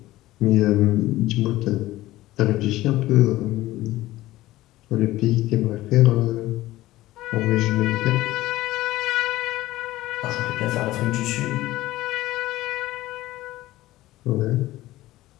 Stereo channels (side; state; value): right; quieter; 16.6 dB